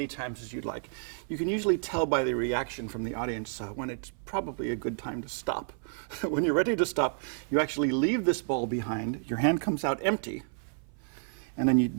times as you'd like. You can usually tell by the reaction from the audience when it's probably a good time to stop. When you're ready to stop, you actually leave this ball behind. Your hand comes out empty. And then you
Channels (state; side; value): silent; left; 57 dB below the other